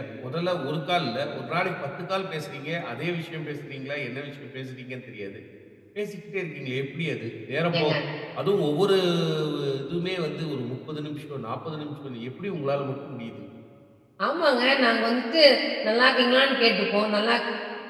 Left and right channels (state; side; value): identical; both; correlation 1.00